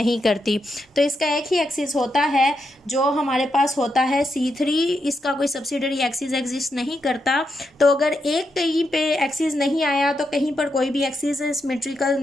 करती। तो इसका एक ही एक्सिस होता है जो हमारे पास होता है C3, इसका कोई सब्सिडरी एक्सिस एग्जिस्ट नहीं करता। तो अगर एक कहीं पे एक्सिस नहीं आया तो कहीं पर कोई भी एक्सिस सिमेट्रिकल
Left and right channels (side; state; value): both; normal; correlation 0.83